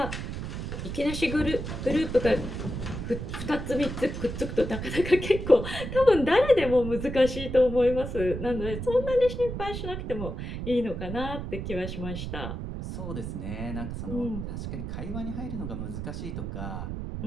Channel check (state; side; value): noise; right; rumble, 6 dB below the sound